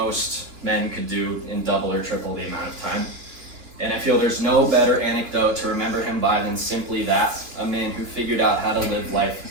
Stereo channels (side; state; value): left; late; 2.8 ms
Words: men could do in double or triple the amount of time. And I feel there's no better anecdote to remember him by than simply that, a man who figured out how to live life